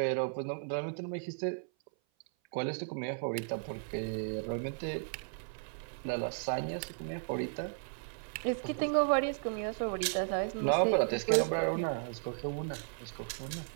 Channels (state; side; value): silent; left; 54 dB below the other